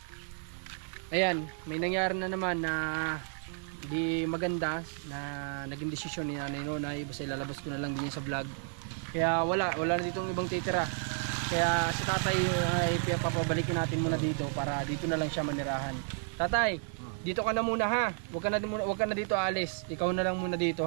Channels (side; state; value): left; silent; 55 dB below the other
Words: ayan, may nangyari na naman na di maganda na naging desisyon ni Nanay Nonay. Basta ilalabas ko na lang din sa vlog. Kaya wala na ditong ibang titira. Kaya si Tatay ay papabalikin natin muna dito para dito na lang siya manirahan. Tatay, dito ka na muna ha. Huwag ka na dito alis. Ikaw na lang muna dito